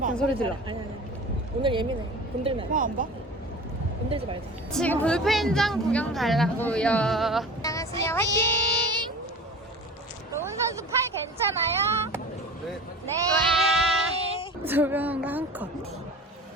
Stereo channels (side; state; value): both; normal; correlation 0.37